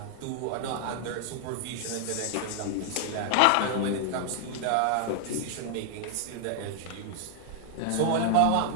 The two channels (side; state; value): both; different; correlation 0.00